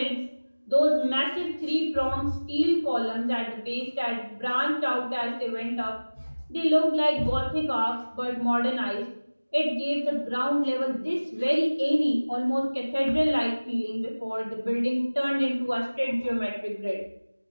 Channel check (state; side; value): inverted; both; correlation -1.00